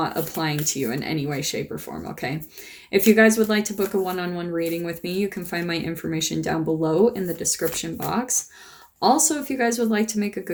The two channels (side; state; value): both; identical; correlation 1.00